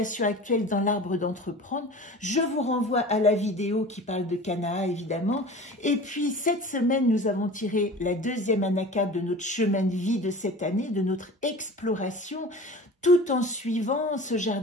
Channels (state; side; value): normal; both; correlation 0.38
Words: actuelle dans l'arbre d'entreprendre. Je vous renvoie à la vidéo qui parle de Kana évidemment. Et puis cette semaine, nous avons tiré la deuxième anacarte de notre chemin de vie de cette année, de notre exploration, tout en suivant ce